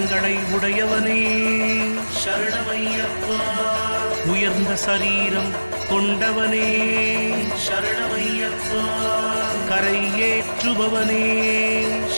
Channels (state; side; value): inverted; both; correlation -1.00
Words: உடையவனே சரணமையப்பா உயர்ந்த சரீரம் கொண்டவனே சரணமையப்பா கரை ஏற்றுபவனே